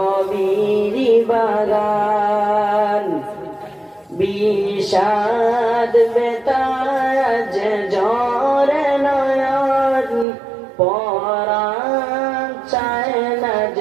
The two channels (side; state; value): left; drops out; at 10.2 s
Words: বাগান বিষাদ বেতাজ ঝরে নয়ন পরাণ চায় না